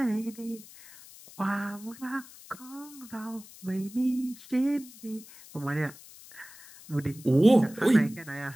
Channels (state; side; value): noise; left; hiss, 19 dB below the sound